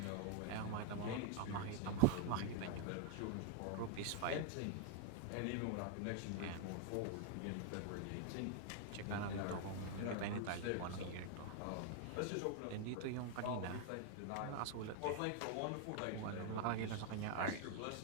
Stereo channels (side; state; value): both; different; correlation 0.00